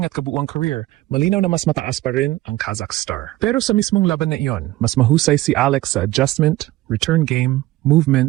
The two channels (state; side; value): quieter; left; 17.0 dB